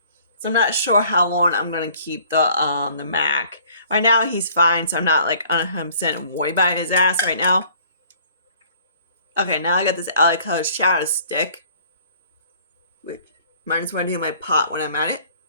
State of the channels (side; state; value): both; inverted; correlation -0.55